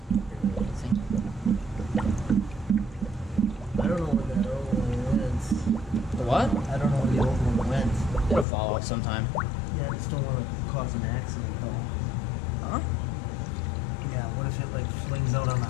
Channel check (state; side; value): drops out; right; at 8.5 s